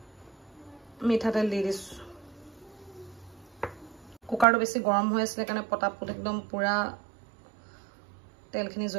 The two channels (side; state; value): left; drops out; at 4.5 s